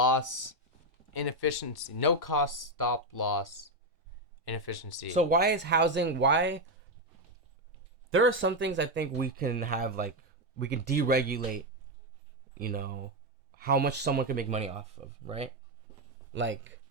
inefficiency. No cost stop loss inefficiency. So why is housing? Why? There are some things I think we can have, like we can deregulate. You know, how much someone can make money off of, right? Like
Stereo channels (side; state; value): both; normal; correlation 0.06